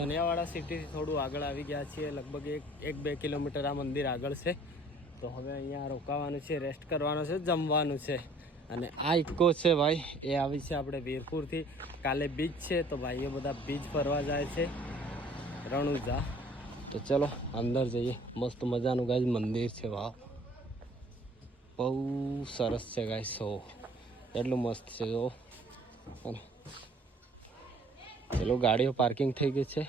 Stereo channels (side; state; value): both; normal; correlation 0.55